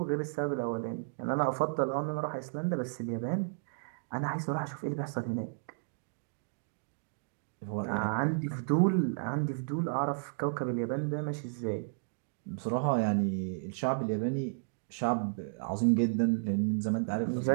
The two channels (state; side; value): silent; left; digital silence